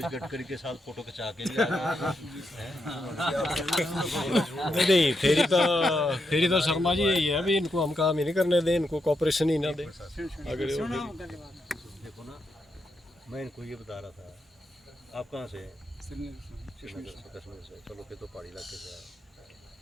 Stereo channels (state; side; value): normal; both; correlation 0.83